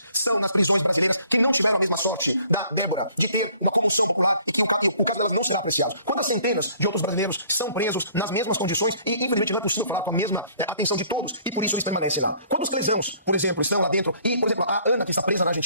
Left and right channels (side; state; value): both; inverted; correlation -0.58